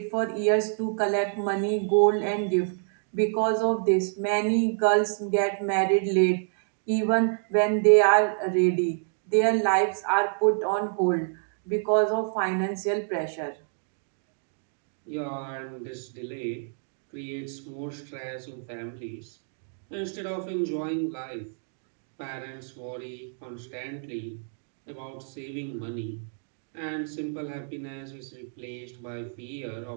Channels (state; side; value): silent; left; digital silence